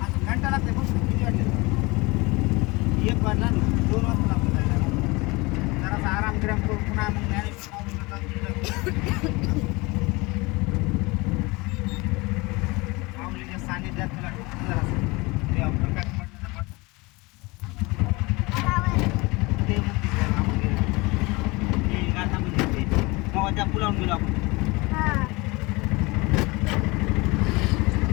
आज घंटा लागते बघ किती वाजले. 1 वाजला ना, 2 वाजता लागतो जायला. जरासा आराम गिराम करून पुन्हा मग ज्ञानेश्वर माऊलीला जाऊन तिकडं माऊलीच्या सानिध्यात तुला ठेवून जरासं देवा प्रकाश पडण्याचा पडतो. ते मंदिर आहे, हा मंदिर आहे. हे गाथा मंदिर ते तेव्हा त्या पुलावून गेलो आपण.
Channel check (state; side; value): quieter; right; 24.4 dB